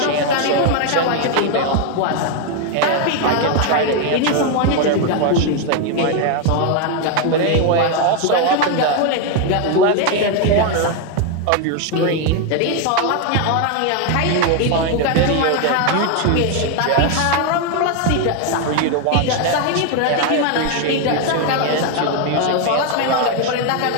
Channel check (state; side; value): different; both; correlation 0.01